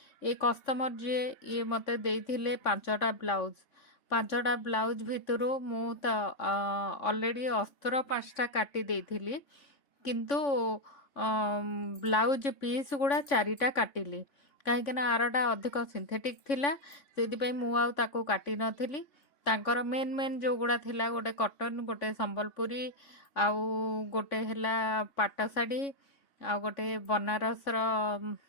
ए कस्टमर जे ये मते देइथिले 5टा ब्लाउज 5टा ब्लाउज भितरु मु त ऑलरेडी अस्त्र 5टा काटी देइथिली किंतु ब्लाउज पीस गुड़ा 4टा काटिली कहीं आरटा अधिक सिंथेटिक थिला से मु आउ ताको काटी नथिली। तांकर मेन मेन जो गुड़ा थिला गोटे कॉटन गोटे संबलपुरी आउ गोटे हैला पाट शाढ़ी आउ गोटे बनारस रो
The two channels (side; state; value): right; late; 3.6 ms